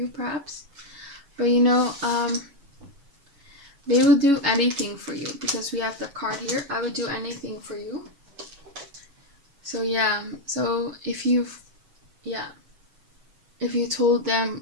perhaps. But they will do anything for you, because we have the card here. I would do anything for you. So yeah, so if you told them,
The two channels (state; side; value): late; left; 7.1 ms